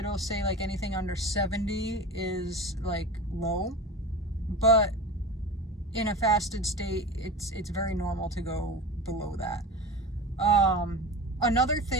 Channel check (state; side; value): normal; both; correlation 0.30